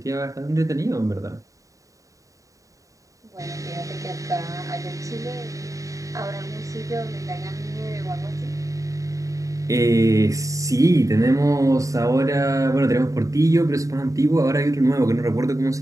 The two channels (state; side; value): late; left; 0.16 ms